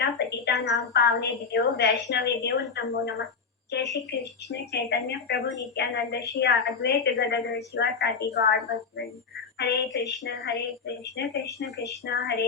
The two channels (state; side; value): quieter; right; 5.4 dB